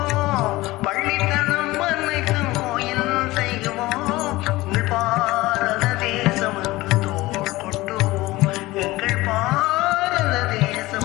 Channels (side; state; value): right; quieter; 19.2 dB